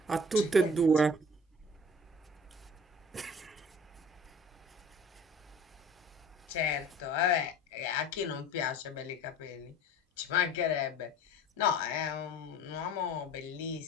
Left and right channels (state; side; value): normal; both; correlation 0.44